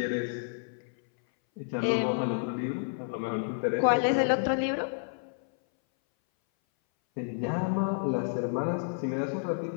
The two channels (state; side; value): silent; right; 58 dB below the other